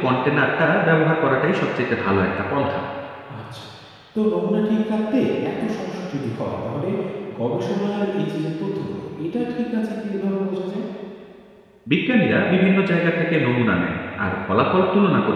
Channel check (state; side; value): identical; both; correlation 1.00